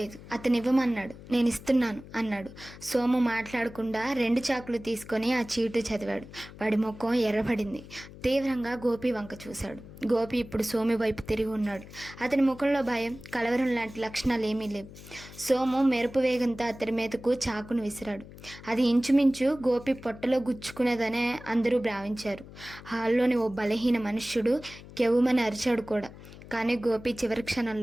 అతను ఇవ్వమన్నాడు, నేను ఇస్తున్నాను అన్నాడు. సోము మాట్లాడకుండా 2 చాకులు తీసుకొని ఆ చీటు చదివాడు. వాడి ముఖం ఎర్రబడింది. తీవ్రంగా గోపి వంక చూశాడు. గోపి ఇప్పుడు సోము వైపు తిరిగి ఉన్నాడు. అతని ముఖంలో భయం, కలవరం లాంటి లక్షణాలు ఏమీ లేవు. సోము మెరుపు వేగంతో అతని మీదకు చాకును విసిరాడు. అది ఇంచుమించు గోపి పొట్టలో గుచ్చుకునేదనే అందరూ భావించారు. హాల్లోని ఓ బలహీన మనుష్యుడు కెవ్వుమని అరిచాడు కూడా. కానీ గోపి చివరి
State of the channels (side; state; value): left; noise; hum, 17 dB below the sound